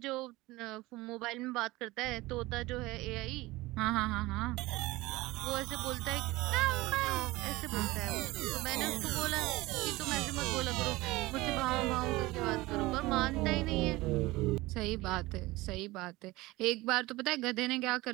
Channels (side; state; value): left; quieter; 20.1 dB